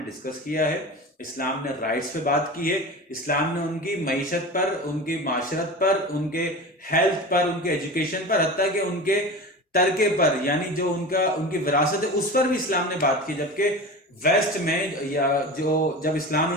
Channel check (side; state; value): both; normal; correlation 0.30